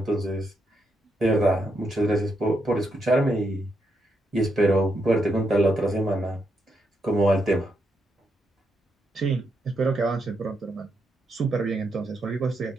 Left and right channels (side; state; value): both; normal; correlation 0.80